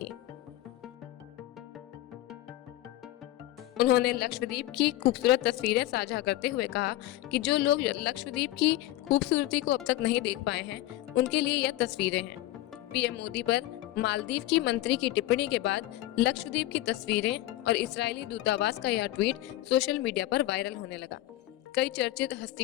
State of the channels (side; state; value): right; quieter; 15.7 dB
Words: उन्होंने लक्षद्वीप की खूबसूरत तस्वीरें साझा करते हुए कहा कि जो लोग लक्षद्वीप की खूबसूरती को अब तक नहीं देख पाए हैं, उनके लिए यह तस्वीरें हैं। पीएम मोदी पर मालदीव की मंत्री की टिप्पणी के बाद लक्षद्वीप की तस्वीरें और इजरायली दूतावास का यह ट्वीट सोशल मीडिया पर वायरल होने लगा। कई चर्चित